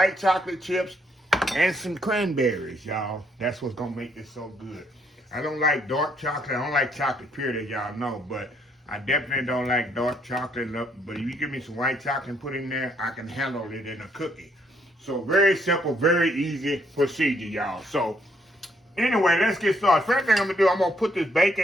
chocolate chips, and some cranberries, y'all. That's what's going to make this so good. I don't like dark chocolate. I don't like chocolate period, as y'all know. But I definitely don't like dark chocolate. But if you give me some white chocolate and put in there, I can handle it in a cookie. So very simple, very easy procedure, y'all. So anyway, let's get started. First thing I'm going to do, I'm going to put this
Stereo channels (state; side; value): normal; both; correlation 0.70